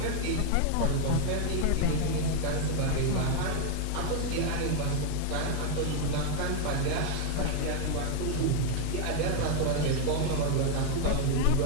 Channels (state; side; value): different; both; correlation 0.00